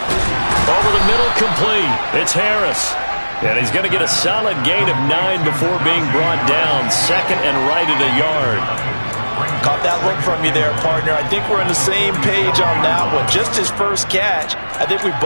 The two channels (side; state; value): both; inverted; correlation -1.00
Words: Over the middle, complete. It's Harris. And he's going to get a solid gain of 9 before being brought down. 2nd and right at a yard. Caught that look from you there, partner. I think we're on the same page on that one. Just his first catch. I think we